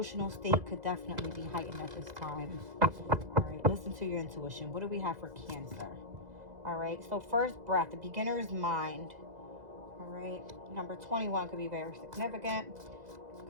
state could definitely be heightened at this time. All right, listen to your intuition. What do we have for Cancer? All right, so first breath, the beginner's mind. All right, number 21 could be very significant.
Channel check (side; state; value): left; late; 2.0 ms